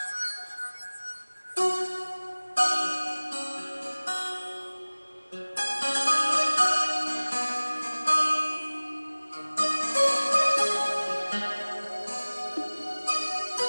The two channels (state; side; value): inverted; both; correlation -1.00